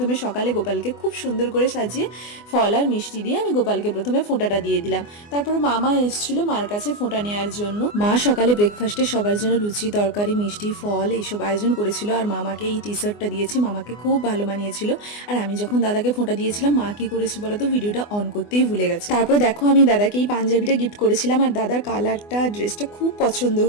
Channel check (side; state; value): right; late; 24 ms